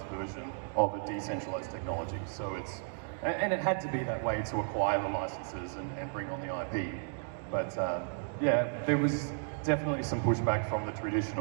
version of a decentralized technology. So and it had to be that way to acquire the licenses and bring on the IP. But there was definitely some pushback from the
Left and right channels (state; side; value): silent; left; 55 dB below the other